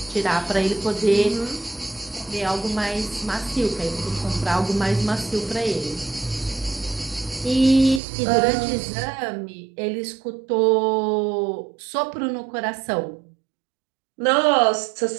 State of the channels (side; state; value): left; drops out; at 8.0 s